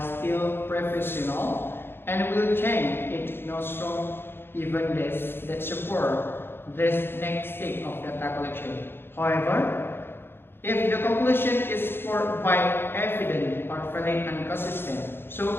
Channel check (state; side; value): late; right; 0.11 ms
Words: still professional, and will change it nostrum even this that support this next stage of data collection. However, if the conclusion is supported by evidence or valid and consistent, so